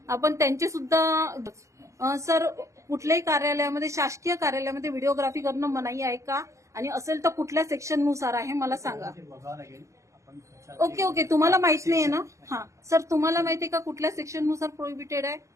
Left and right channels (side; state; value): left; late; 0.15 ms